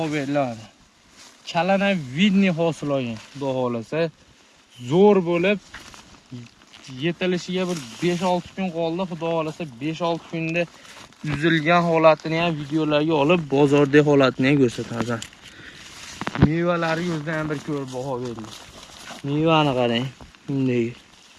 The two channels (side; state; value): both; identical; correlation 1.00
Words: beriladi. Chalana vidniy hosil olgan, xudo xolasa zo'r bo'lib yetilishiga bir 5-6 kun qoldi. Xudo xolasa 5-6 kunda uzilgan holatini ham videolarga olib, bozordagi holatini ham ko'rsatamiz. Mevalari o'zidan ham bir ko'rib baho berdik. Mevani qarang. Bunday.